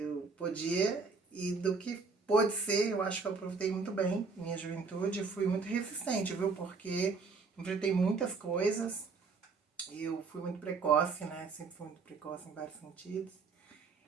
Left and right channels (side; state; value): left; quieter; 4.6 dB